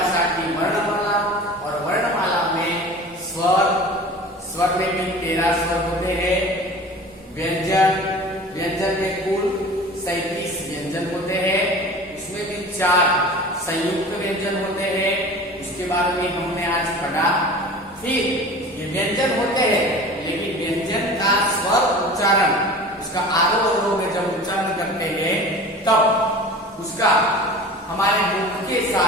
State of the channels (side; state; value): both; normal; correlation 0.39